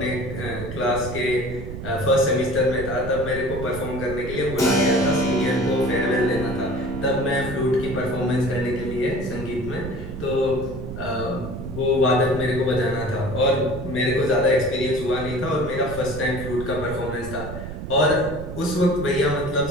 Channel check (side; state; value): right; noise; rumble, 8 dB below the sound